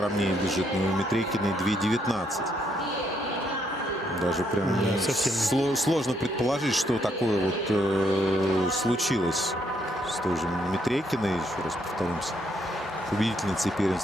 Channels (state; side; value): normal; both; correlation 0.73